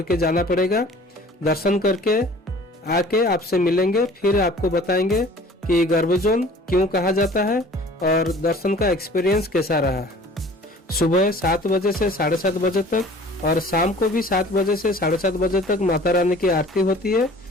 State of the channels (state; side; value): normal; both; correlation 0.48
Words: के जाना पड़ेगा। दर्शन करके आके आपसे मिलेंगे, फिर आपको बताएंगे कि गर्भजोन क्यों कहा जाता है और दर्शन का एक्सपीरियंस कैसा रहा। सुबह 7 बजे से 7:30 बजे तक और शाम को भी 7 बजे से 7:30 बजे तक माता रानी की आरती होती है।